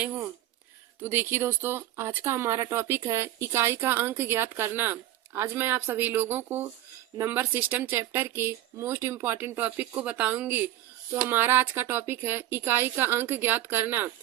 हूँ। तो देखिए दोस्तों, आज का हमारा टॉपिक है इकाई का अंक ज्ञात करना। आज मैं आप सभी लोगों को नंबर सिस्टम चैप्टर के मोस्ट इम्पॉर्टेंट टॉपिक को बताऊंगी। तो हमारा आज का टॉपिक है इकाई का अंक ज्ञात करना।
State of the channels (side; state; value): left; quieter; 13.8 dB